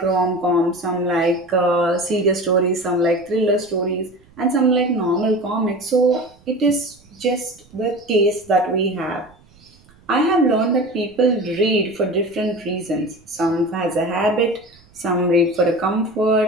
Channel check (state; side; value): noise; right; rumble, 29 dB below the sound